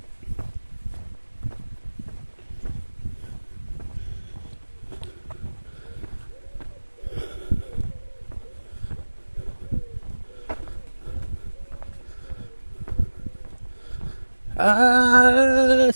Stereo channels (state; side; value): inverted; both; correlation -1.00